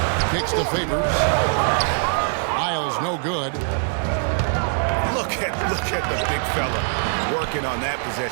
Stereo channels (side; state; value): left; silent; 61 dB below the other